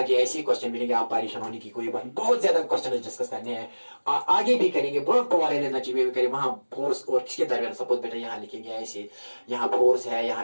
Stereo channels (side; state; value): both; inverted; correlation -1.00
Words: ऐसे क्वेश्चन मिलेंगे, आप परेशान होने की कोई बात. बहुत ज्यादा क्वेश्चन डिस्कस करने हैं, आगे भी करेंगे. बहुत पॉवर एनर्जी में भी करेंगे. वहां फोर्स और किसके दरमियान, सपोज बेटा यहाँ लिखेंगे ऐसे, यहाँ फोर्स है,